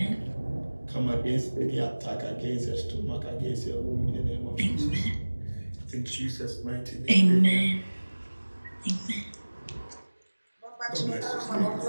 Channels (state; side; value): inverted; both; correlation -1.00